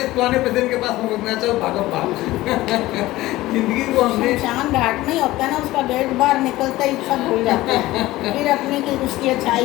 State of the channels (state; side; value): quieter; right; 17.4 dB